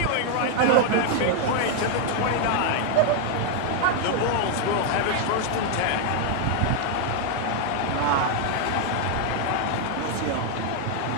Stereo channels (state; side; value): different; both; correlation 0.00